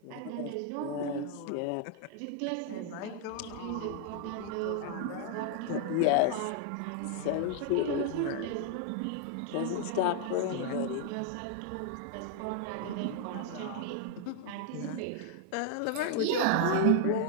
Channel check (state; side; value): different; both; correlation 0.00